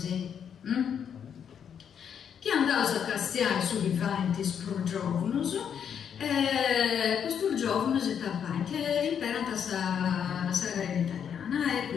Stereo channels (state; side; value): quieter; right; 8.0 dB